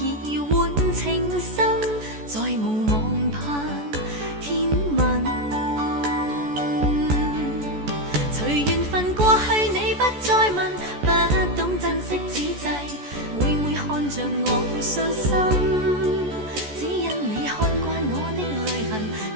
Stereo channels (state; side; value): late; left; 14 ms